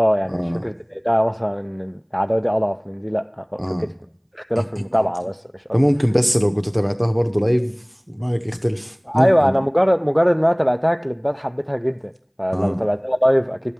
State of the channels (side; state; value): both; identical; correlation 1.00